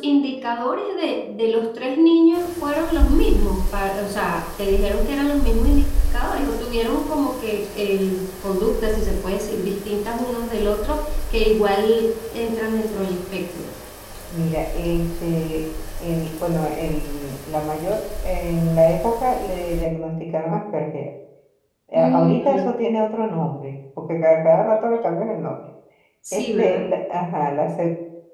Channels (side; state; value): both; identical; correlation 1.00